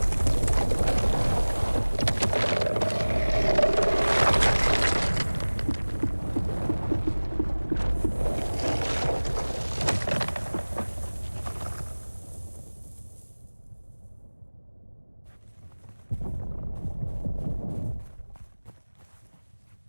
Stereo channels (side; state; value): both; inverted; correlation -1.00